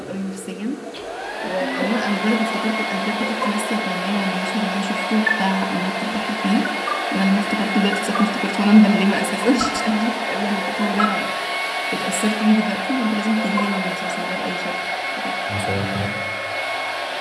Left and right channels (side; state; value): both; identical; correlation 1.00